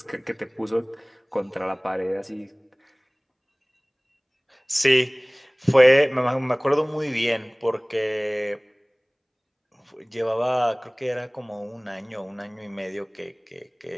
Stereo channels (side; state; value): both; identical; correlation 1.00